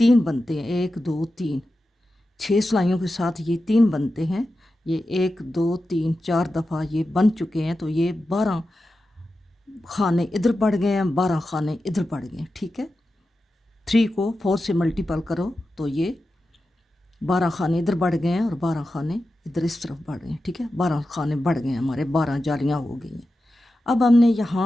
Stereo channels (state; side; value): normal; both; correlation 0.92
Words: बनते हैं, 1 2 3, 6 सिलाइयों के साथ ये 3 बनते हैं। ये 1 2 3 4 दफ़ा ये बन चुके हैं, तो ये 12 खाने इधर बढ़ गए हैं, 12 खाने इधर बढ़ गए, ठीक है। 3 को 4 से मल्टीपल करो तो ये 12 खाने इधर बढ़ गए हैं और 12 खाने इधर इस तरफ बढ़ गए, ठीक है। 12 खाने बढ़ गए हमारे, 12 जालियाँ हो गई हैं। अब हमने